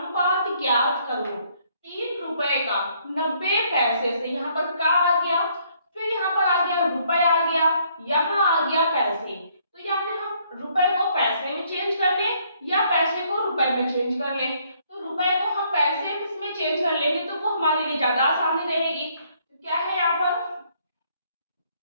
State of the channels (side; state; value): both; inverted; correlation -0.67